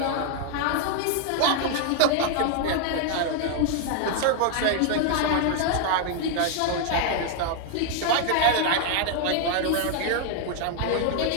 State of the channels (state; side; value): different; both; correlation 0.00